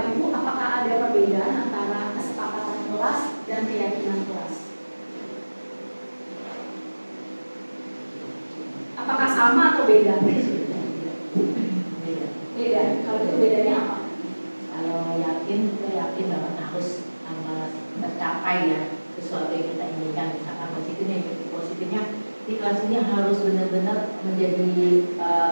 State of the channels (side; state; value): both; inverted; correlation -1.00